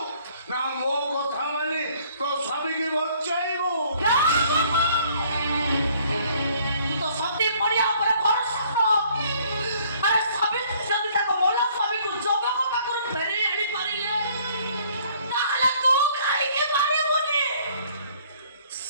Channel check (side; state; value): both; inverted; correlation -0.59